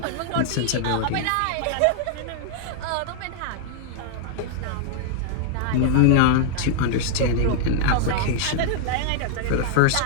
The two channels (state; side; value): different; both; correlation -0.01